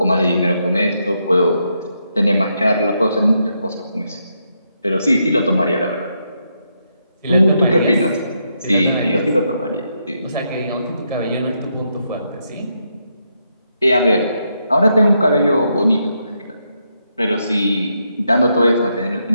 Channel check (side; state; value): both; inverted; correlation -0.80